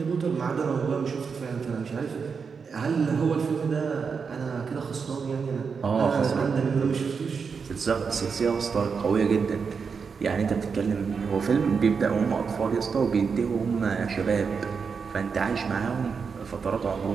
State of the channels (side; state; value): left; quieter; 5.7 dB